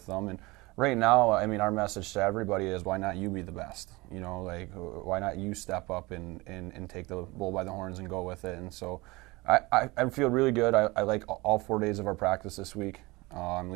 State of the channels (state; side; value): quieter; left; 22.9 dB